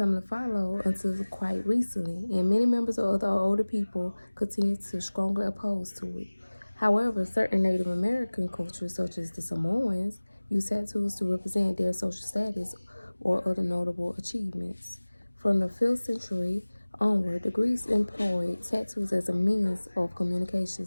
to follow until quite recently, and many members of the older people continue to strongly oppose to it. However, certain Native American cultures, such as the Samoans, use tattoos to represent their social status or other notable achievements. From the 5th century onward, the Greeks employed tattoos as a means of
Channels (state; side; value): inverted; both; correlation -1.00